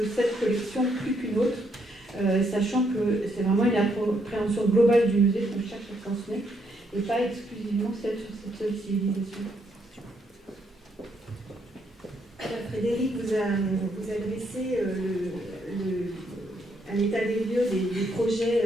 cette collection plus qu'une autre, sachant que c'est vraiment une appréhension globale du musée qu'on cherche à transmettre et pas exclusivement celle sur cette seule civilisation. Frédéric vous a dressé un état des lieux des projets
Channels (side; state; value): both; normal; correlation 0.74